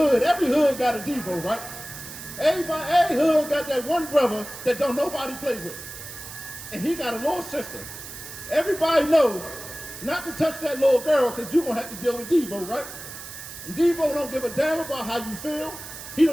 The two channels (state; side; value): noise; right; hiss, 12 dB below the sound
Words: every hood got a Devo, right? Every hood got that one brother that don't nobody play with. And he got a little sister. Everybody knows not to touch that little girl because you're going to have to deal with Devo, right? And Devo don't give a damn about how you feel. He